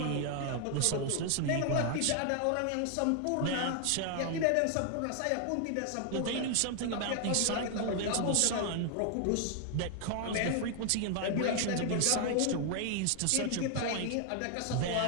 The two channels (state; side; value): different; both; correlation 0.00